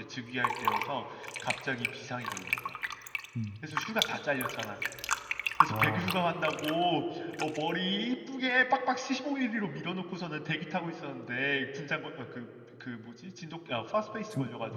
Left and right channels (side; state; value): both; identical; correlation 1.00